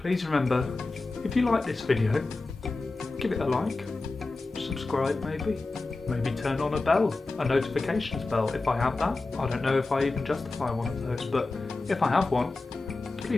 remember, if you like this video, give it a like, subscribe maybe turn on a notifications bell if I have that. I don't know if I even justify one of those, but if I have one,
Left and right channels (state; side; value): quieter; right; 3.4 dB